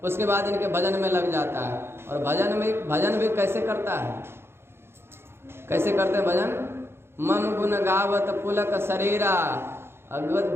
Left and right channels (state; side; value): late; left; 0.12 ms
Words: उसके बाद इनके भजन में लग जाता है। और भजन भी कैसे करता है? कैसे करते हैं भजन? मम गुण गावत पुलक शरीरा